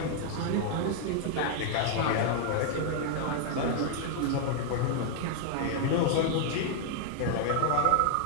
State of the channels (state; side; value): different; both; correlation 0.00